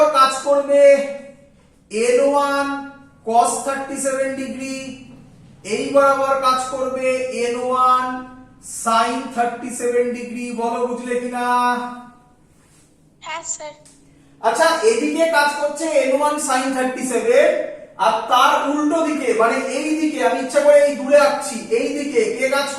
কাজ করবে n1 cos 37 ডিগ্রি, এই বরাবর কাজ করবে n1 sin 37 ডিগ্রি। বলো বুঝলে কিনা? হ্যাঁ স্যার। আচ্ছা এদিকে কাজ করছে n1 sin 37, আর তার উল্টো দিকে মানে এই দিকে, আমি ইচ্ছা করে এই দূরে আঁকছি, এই দিকে কে কাজ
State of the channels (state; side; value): identical; both; correlation 1.00